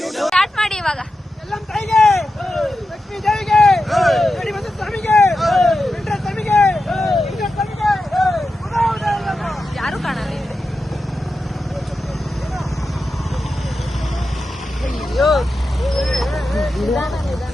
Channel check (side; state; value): both; normal; correlation 0.91